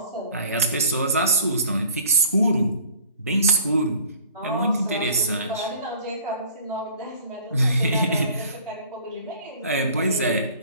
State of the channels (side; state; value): both; inverted; correlation -0.48